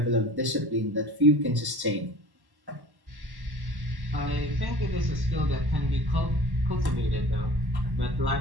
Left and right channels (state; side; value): late; left; 1.1 ms